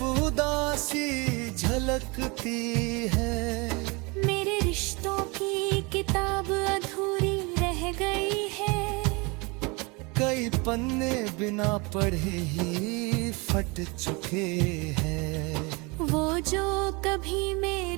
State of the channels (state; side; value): quieter; left; 27.8 dB